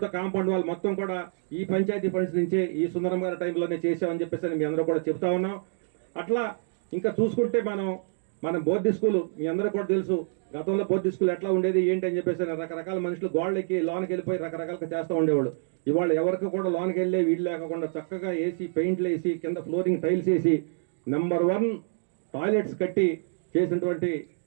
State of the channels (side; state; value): left; silent; digital silence